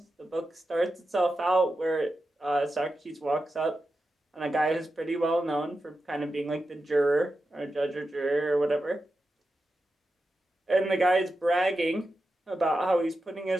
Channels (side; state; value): both; normal; correlation 0.90